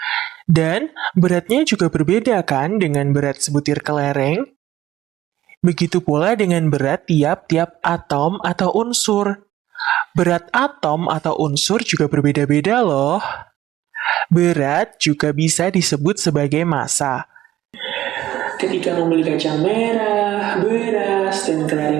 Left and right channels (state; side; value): quieter; left; 13.9 dB